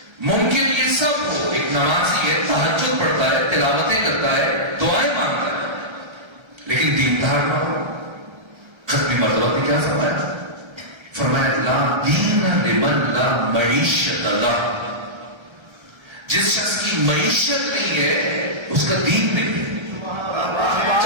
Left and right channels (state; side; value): late; left; 1.3 ms